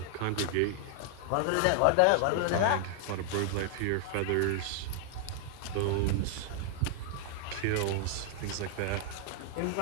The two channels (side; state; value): both; different; correlation 0.00